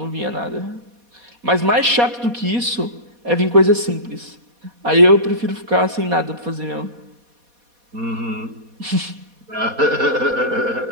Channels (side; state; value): left; late; 4.2 ms